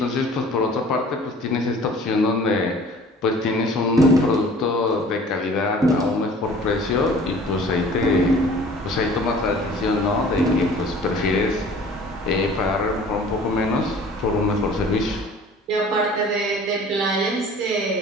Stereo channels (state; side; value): normal; both; correlation 0.48